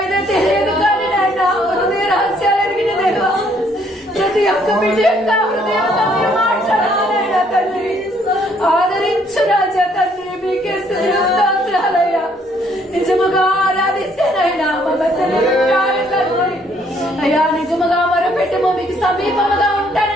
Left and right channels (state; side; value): normal; both; correlation 0.66